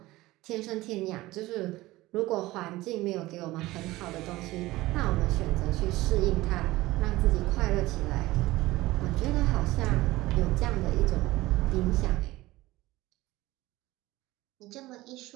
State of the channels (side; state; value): left; quieter; 18.5 dB